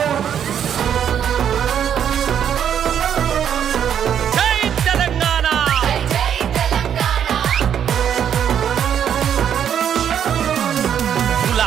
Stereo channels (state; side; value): quieter; left; 8.9 dB